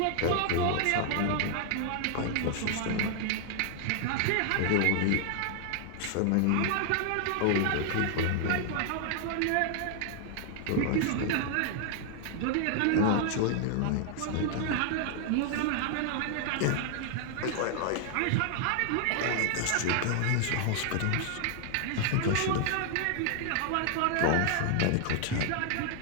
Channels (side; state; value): both; different; correlation 0.00